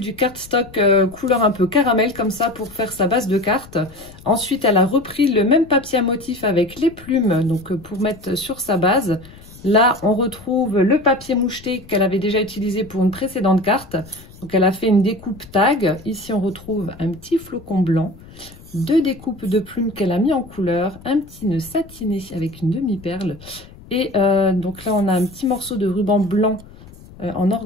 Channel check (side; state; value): left; noise; rumble, 20 dB below the sound